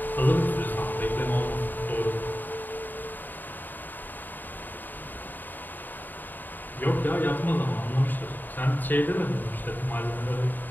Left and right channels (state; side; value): late; right; 0.089 ms